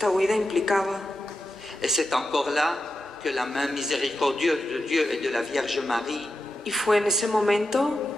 huida implicaba. Et c'est encore là que la main miséricordieuse de Dieu et de la Vierge Marie Y fue en ese momento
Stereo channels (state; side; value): normal; both; correlation 0.89